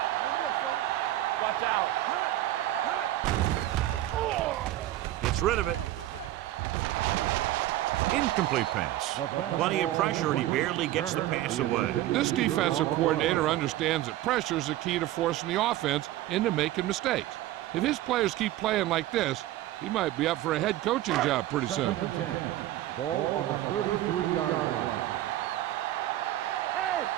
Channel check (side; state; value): left; quieter; 14.7 dB